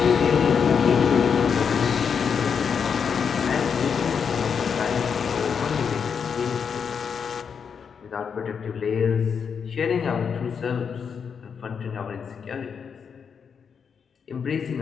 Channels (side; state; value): right; quieter; 6.6 dB